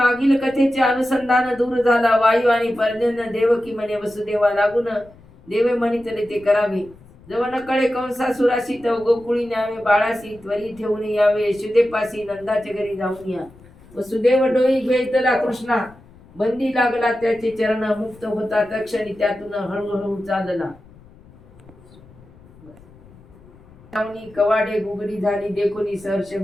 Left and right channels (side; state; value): left; noise; rumble, 24 dB below the sound